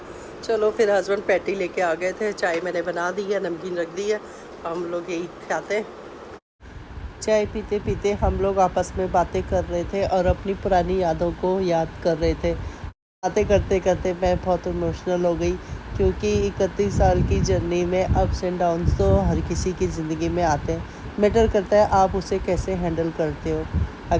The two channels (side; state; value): both; identical; correlation 1.00